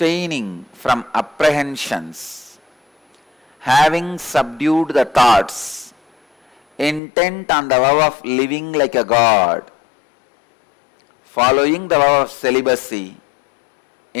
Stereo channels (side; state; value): right; drops out; at 7.0 s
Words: from apprehensions, having subdued the thoughts, intent on the vow of living like a god, following the vow of celibacy,